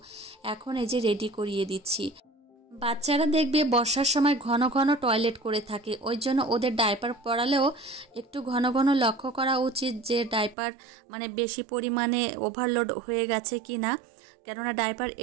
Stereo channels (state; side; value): drops out; left; at 10.6 s